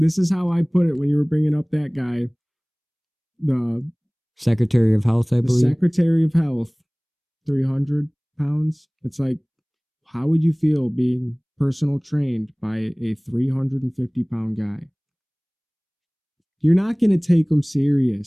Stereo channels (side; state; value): both; identical; correlation 1.00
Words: is how I put it when you were bringing up that guy, the Secretary of Health. I believe. The Secretary of Health, 300 pounds. It's like, how would you feel being personal trained by a 350-pound guy? You're not going to take them